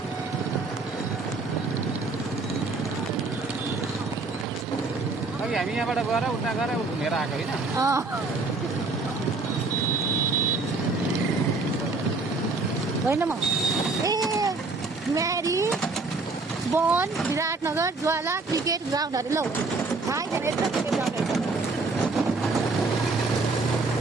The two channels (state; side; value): quieter; left; 3.7 dB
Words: हामी यहाँबाट गएर उता गएर घुमेर आएको होइन। होइन म म्यारी वन विराटनगर ज्वाला क्रिकेट ग्राउन्डहरू लौ थाहै छैन यस्तो क्रिकेट ग्राउन्डहरू छ।